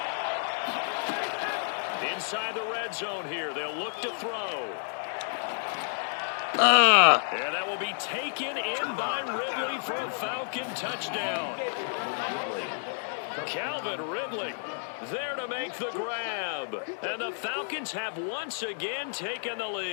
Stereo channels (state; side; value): silent; right; digital silence